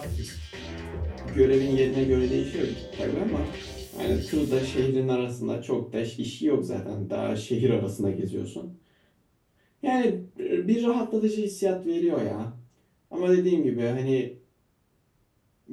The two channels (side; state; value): both; identical; correlation 1.00